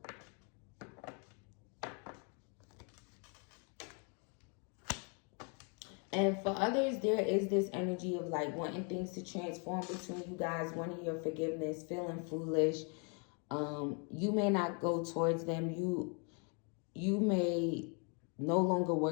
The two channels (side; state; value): right; quieter; 37.4 dB